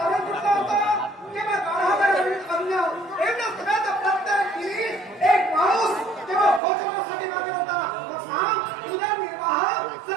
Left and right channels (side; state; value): left; drops out; at 6.6 s